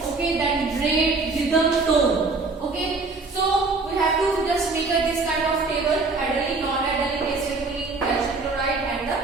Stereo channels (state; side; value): quieter; left; 3.8 dB